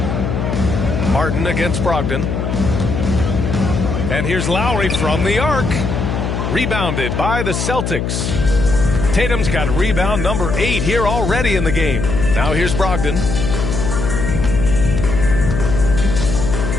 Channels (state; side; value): noise; left; hum, 2 dB below the sound